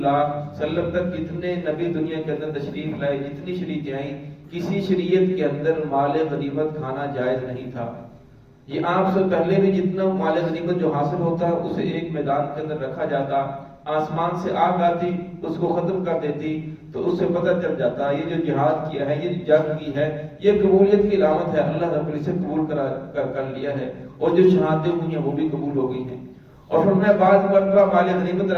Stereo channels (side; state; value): both; identical; correlation 1.00